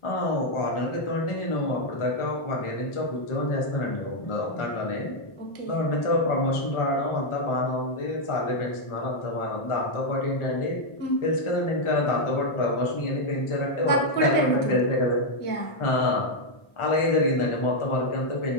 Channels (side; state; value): right; late; 1.4 ms